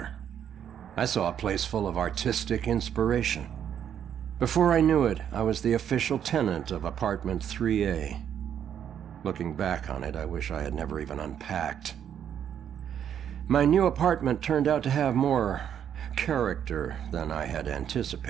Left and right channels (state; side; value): quieter; left; 9.1 dB